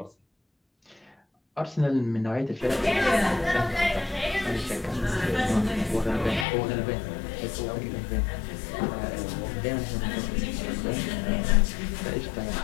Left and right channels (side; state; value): right; drops out; at 6.5 s